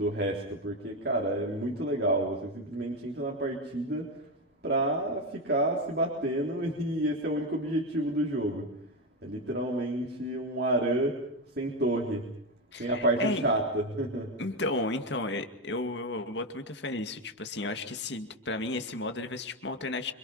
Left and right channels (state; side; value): normal; both; correlation 0.14